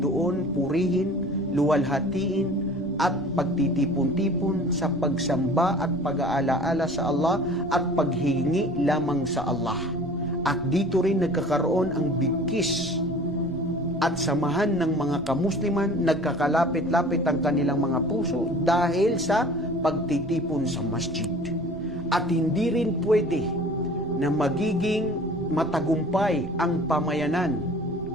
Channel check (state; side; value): noise; right; rumble, 17 dB below the sound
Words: purihin, luwalhatiin, at pagtitipon-tipon sa pagsamba at pag-aalaala sa Allah at paghingi lamang sa Allah. At dito rin nagkakaroon ang bigkis at samahan ng mga kamusliman, nagkakalapit-lapit ang kanilang mga puso dahil sa pagtitipon sa masjid. At hindi rin pwede na magiging matagumpay ang pamayanan